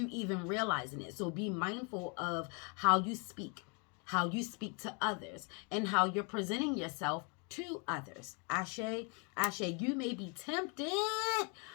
even realizing it. So be mindful of how you speak to others, and how you're presenting yourself to others. Ashe, ashe, you may be tempted,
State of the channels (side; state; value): right; quieter; 35.1 dB